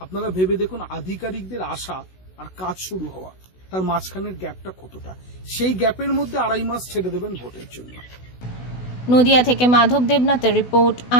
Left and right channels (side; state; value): right; late; 16 ms